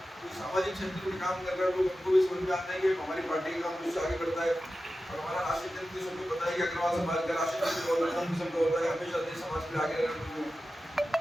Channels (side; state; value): both; normal; correlation 0.93